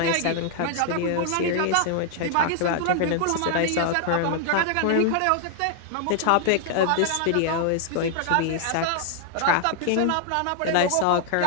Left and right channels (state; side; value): different; both; correlation 0.00